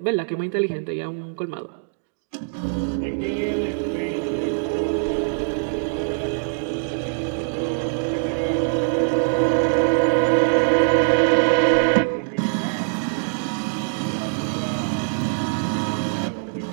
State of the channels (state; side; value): silent; left; digital silence